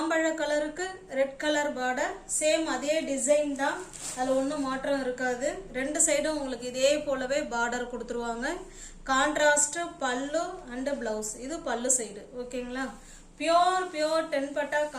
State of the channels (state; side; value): identical; both; correlation 1.00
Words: கலருக்கு ரெட் கலர் பார்டர். சேம் அதே டிசைன் தான், அதில் ஒன்றும் மாற்றம் இருக்காது. ரெண்டு சைடும் உங்களுக்கு இதே போலவே பார்டர் கொடுத்துருவாங்க. கான்ட்ராஸ்ட் பல்லு அண்ட் பிளவுஸ். இது பல்லு சைடு. ஓகேங்களா? பியோர் 10 பட்டா